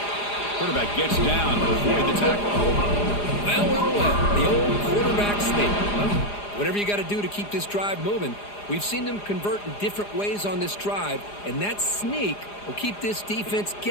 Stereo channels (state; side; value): late; right; 4.9 ms